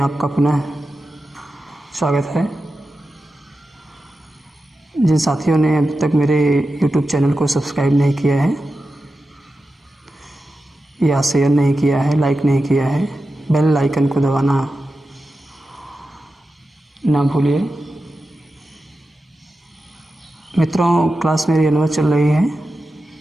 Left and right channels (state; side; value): normal; both; correlation 0.92